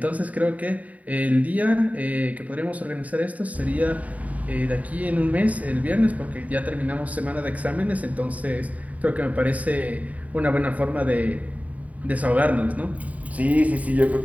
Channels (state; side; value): late; left; 0.071 ms